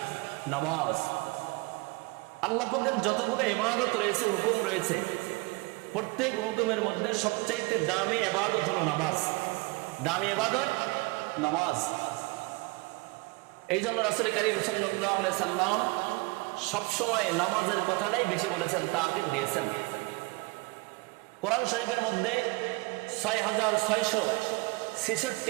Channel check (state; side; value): quieter; left; 25.1 dB